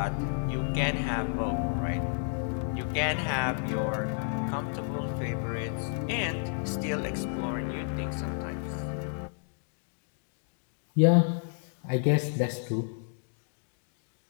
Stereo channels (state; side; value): silent; right; 57 dB below the other